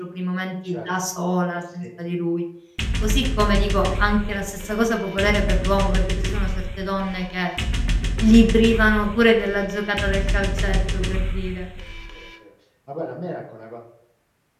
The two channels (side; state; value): both; identical; correlation 1.00